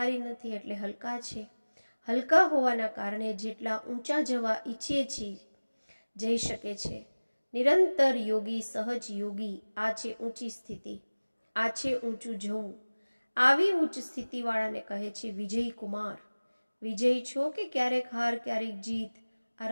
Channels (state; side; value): inverted; both; correlation -1.00